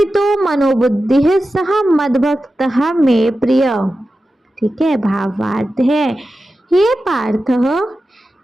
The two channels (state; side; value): normal; both; correlation 0.93